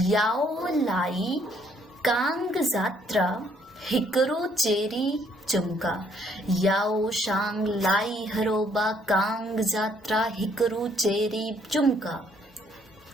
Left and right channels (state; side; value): normal; both; correlation 0.66